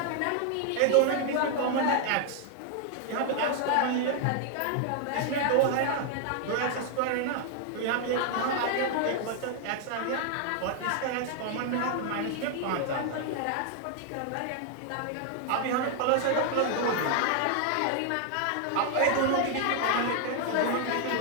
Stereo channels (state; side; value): different; both; correlation 0.00